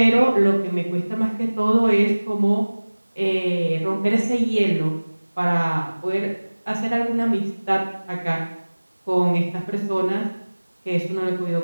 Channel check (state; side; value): inverted; both; correlation -1.00